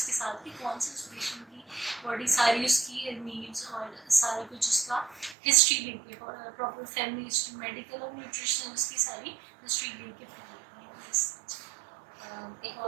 के साथ, कि कौन से उस पेशेंट की बॉडी सारी उसकी नीड्स और सारा कुछ उसका हिस्ट्री लेके, प्रॉपर फैमिली हिस्ट्री, मेडिकल और न्यूट्रिशनल उसकी सारी हिस्ट्री लेके फिर एक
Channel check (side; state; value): left; drops out; at 5.4 s